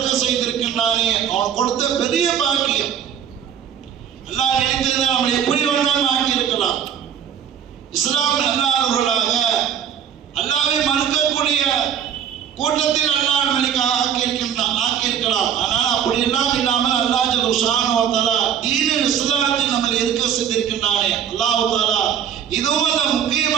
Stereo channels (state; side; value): quieter; left; 8.9 dB